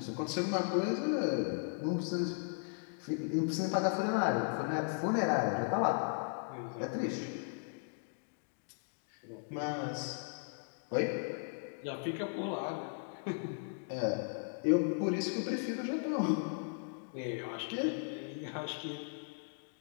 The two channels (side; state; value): right; silent; digital silence